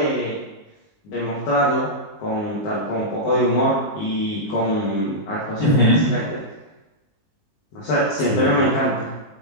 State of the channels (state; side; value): late; right; 19 ms